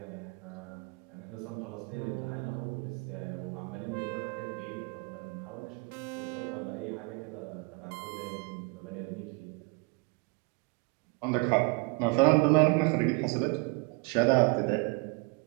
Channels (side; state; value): left; quieter; 31.1 dB